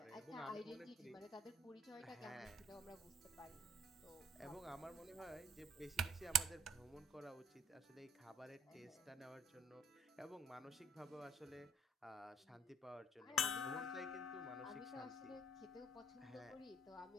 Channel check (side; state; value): both; normal; correlation 0.62